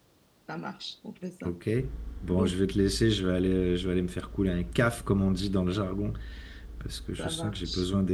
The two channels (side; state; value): both; identical; correlation 1.00